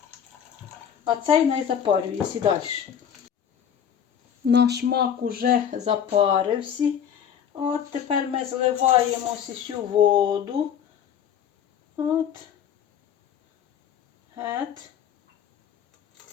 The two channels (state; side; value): quieter; right; 8.6 dB